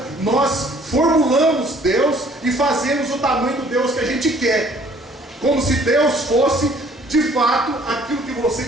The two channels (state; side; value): normal; both; correlation 0.58